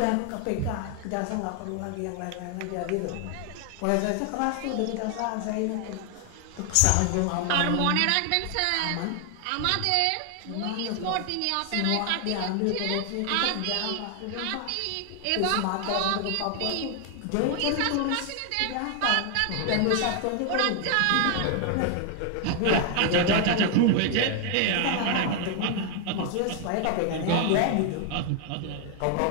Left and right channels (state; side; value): different; both; correlation 0.00